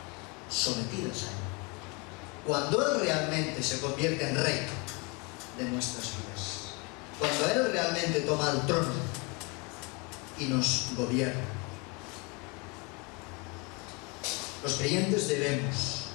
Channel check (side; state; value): right; quieter; 29.3 dB